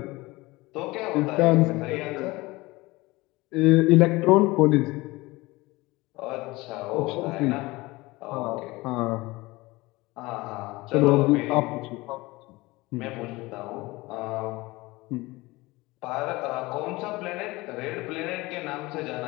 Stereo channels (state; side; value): quieter; right; 21.5 dB